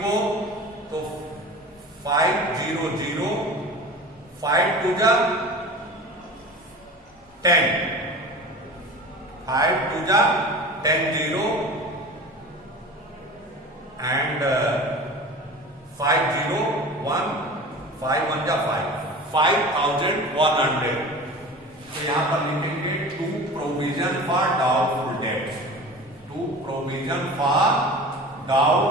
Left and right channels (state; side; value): normal; both; correlation 0.36